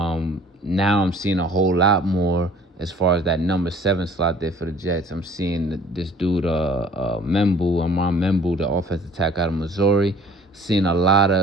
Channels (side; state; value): both; normal; correlation 0.52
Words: I'm seeing a whole lot more as far as that number 7 slot there for the Jets. I'm seeing this dude, Amon Membu, the offensive tackle out of Missouri. Seeing a